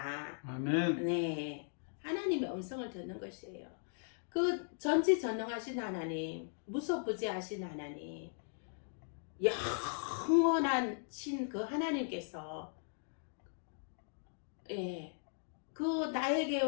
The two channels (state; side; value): silent; right; digital silence